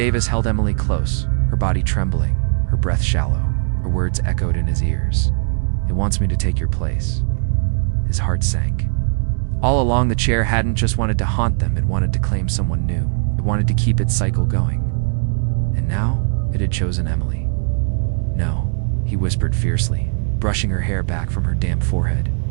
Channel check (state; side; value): silent; left; digital silence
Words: held Emily close, her body trembling, her breath shallow. Her words echoed in his ears. "It wants me to take your place." His heart sank. All along, the chair hadn't just wanted to haunt them, it wanted to claim someone new. It wanted to keep its cycle going. And now, it had chosen Emily. "No," he whispered fiercely, brushing her hair back from her damp forehead.